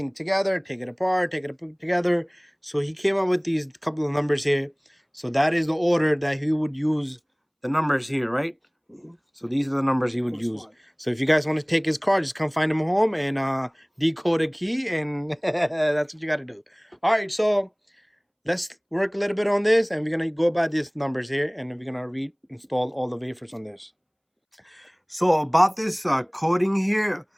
together, take it apart, take it together. So he came up with these couple of numbers here. So that is the order that he would use the numbers here, right? So these are the numbers he would use. So if you guys want to take his card, just come find him home and decode a key, and that's what you got to do. All right, so let's work a little bit on this, and we're going to go by these numbers here, and we're going to reinstall all the wafers on this. So about this coding here,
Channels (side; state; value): both; identical; correlation 1.00